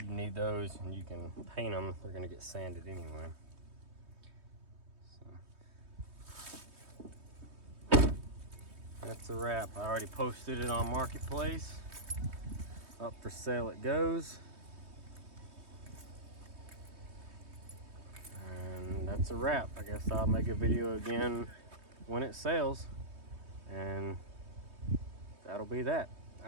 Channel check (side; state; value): left; late; 3.2 ms